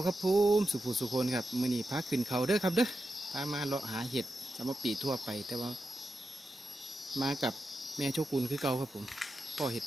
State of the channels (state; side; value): normal; both; correlation 0.89